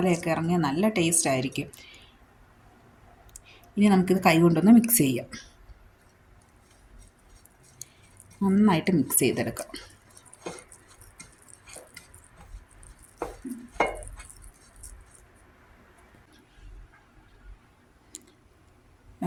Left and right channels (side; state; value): both; identical; correlation 1.00